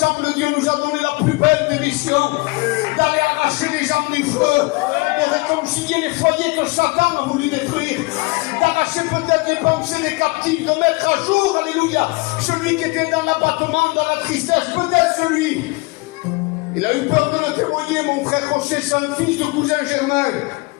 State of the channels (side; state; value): right; quieter; 26.1 dB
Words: Dieu nous a donné la plus belle des missions, d'aller arracher les âmes du feu, de réconcilier les foyers que Satan a voulu détruire, d'arracher peut-être les pensées des captifs, de mettre à jour, alléluia, celui qui était dans l'abattement, dans la tristesse, peut-être celui. Il a eu peur de le témoigner, mon frère Rocher, c'est un fils de cousin Germain.